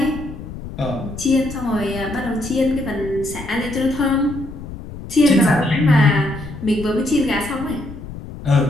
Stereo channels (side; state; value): left; noise; rumble, 11 dB below the sound